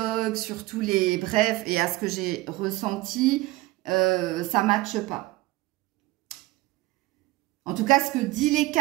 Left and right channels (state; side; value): quieter; left; 19.4 dB